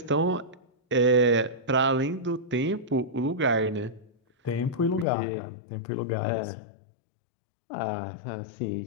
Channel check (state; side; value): drops out; right; at 5.1 s